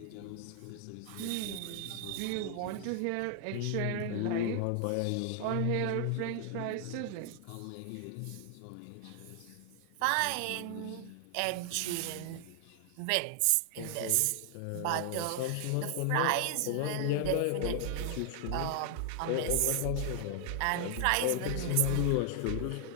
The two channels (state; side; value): different; both; correlation 0.00